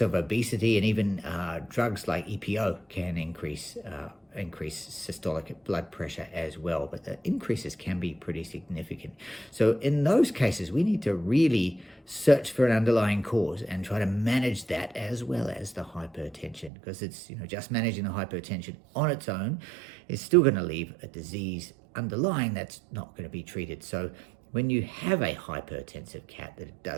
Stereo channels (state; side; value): drops out; left; at 16.7 s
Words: of obesity and even drugs like EPO can increase systolic blood pressure as well, but the increases can be pretty significant. So in those cases, we need to really search for an underlying cause and try to manage that as well as the hypertension, because it's just managing the hypertension on its own is still going to leave a disease underlying that's not going to be treated. So when you have a hypertensive cat that